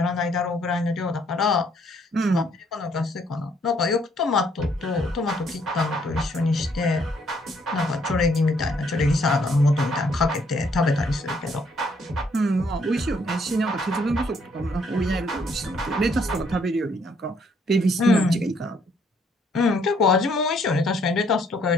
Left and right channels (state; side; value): normal; both; correlation 0.67